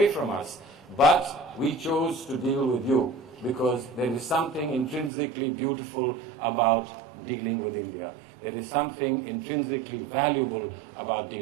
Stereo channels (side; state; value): left; drops out; at 5.1 s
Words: from us, but we chose to deal with you because there is something intrinsically beautiful about dealing with India. There is something intrinsically valuable about